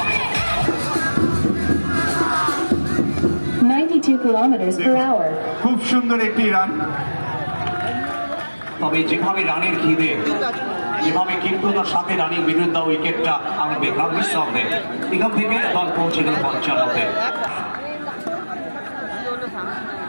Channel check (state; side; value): inverted; both; correlation -1.00